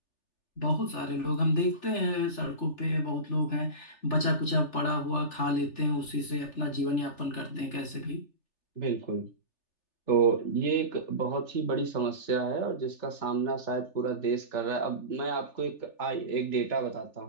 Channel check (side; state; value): right; late; 3.4 ms